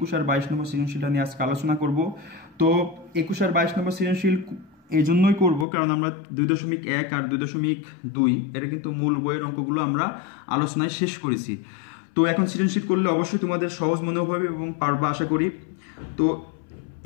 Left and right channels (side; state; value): right; drops out; at 5.7 s